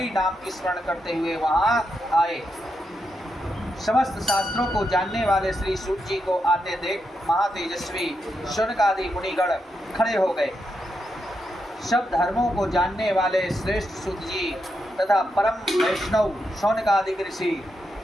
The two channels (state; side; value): normal; both; correlation 0.84